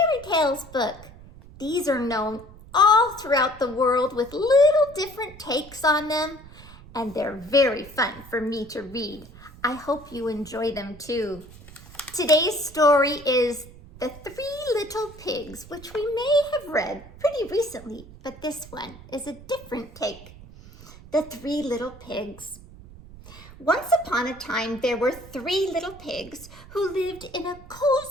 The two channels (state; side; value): noise; right; rumble, 19 dB below the sound